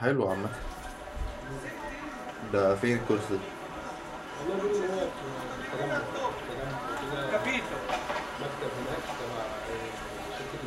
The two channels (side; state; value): both; identical; correlation 1.00